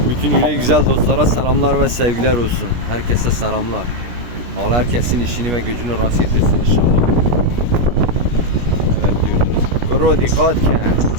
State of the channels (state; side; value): late; left; 17 ms